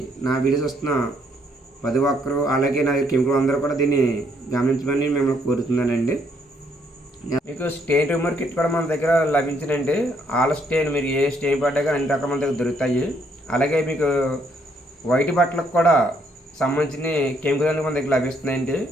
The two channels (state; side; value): normal; both; correlation 0.70